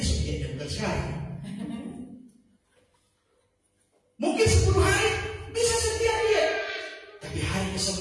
diet, bukan sekarang. Mungkin 10 hari bisa setia dia, tapi hari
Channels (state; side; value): identical; both; correlation 1.00